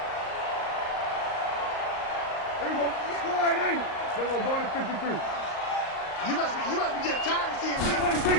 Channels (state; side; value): late; right; 38 ms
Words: There you go. Score right, ain't it? Then we're going to 53. You must be getting tired of seeing me.